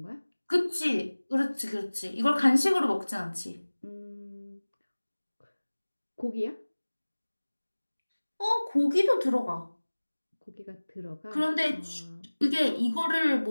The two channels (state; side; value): inverted; both; correlation -1.00